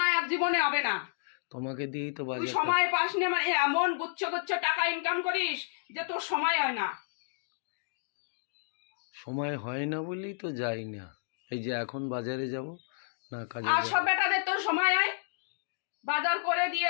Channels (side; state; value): right; silent; digital silence